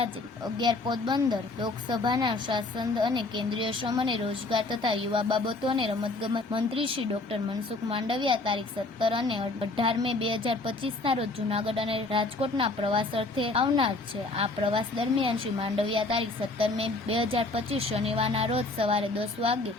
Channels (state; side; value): quieter; right; 3.2 dB